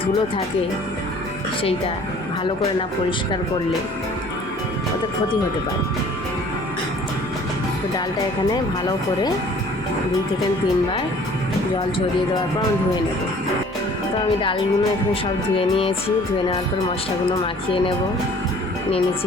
ধুলো থাকে সেইটা ভালো করে না পরিষ্কার করলে ওতে ক্ষতি হতে পারে। তো ডালটা এখানে ভালো করে 2 থেকে 3 বার জল ঝরিয়ে দেওয়ার পর আমি ধুয়ে নেব। তো আমি ডালগুলো এখানে সব ধুয়ে নিয়েছি। ধুয়ে নেওয়ার পর মশলাগুলো মাখিয়ে নেব। নিয়ে নিচ্ছি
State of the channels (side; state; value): both; normal; correlation 0.52